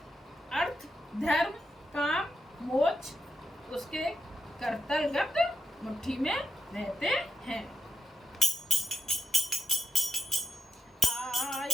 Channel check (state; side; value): normal; both; correlation 0.82